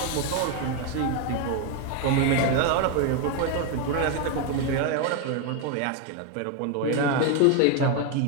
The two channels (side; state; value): both; different; correlation 0.01